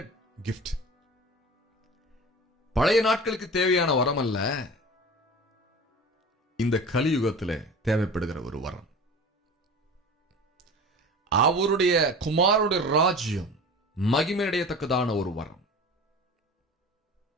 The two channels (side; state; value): both; normal; correlation 0.36